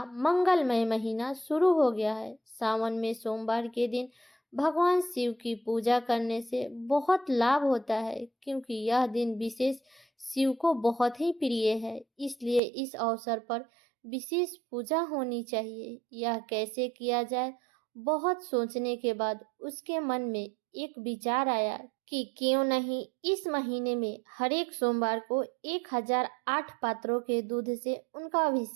मंगलमय महीना शुरू हो गया है। सावन में सोमवार के दिन भगवान शिव की पूजा करने से बहुत लाभ होता है, क्योंकि यह दिन विशेष शिव को बहुत ही प्रिय है। इसलिए इस अवसर पर विशेष पूजा होनी चाहिए। यह कैसे किया जाए? बहुत सोचने के बाद उसके मन में एक विचार आया कि क्यों नहीं इस महीने में हर एक सोमवार को 1008 पात्रों के दूध से उनका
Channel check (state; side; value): drops out; left; at 12.6 s